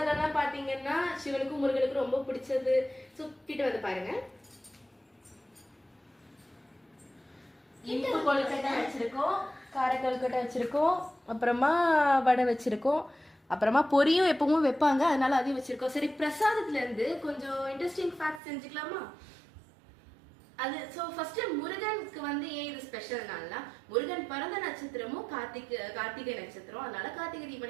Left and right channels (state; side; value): drops out; left; at 18.4 s